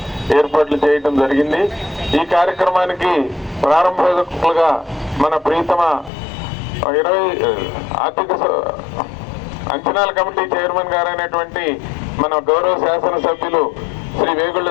ఏర్పాట్లు చేయడం జరిగింది. ఈ కార్యక్రమానికి ప్రారంభకులుగా మన ప్రీతమ 20 ఆర్థిక అంచనాల కమిటీ చైర్మన్ గారైనటువంటి మన గౌరవ శాసనసభ్యులు శ్రీ వేగుళ్ల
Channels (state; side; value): drops out; right; at 6.1 s